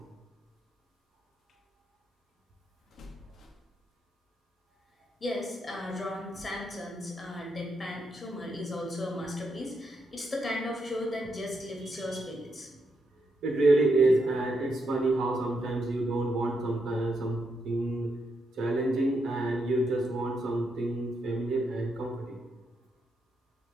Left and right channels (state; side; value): normal; both; correlation 0.80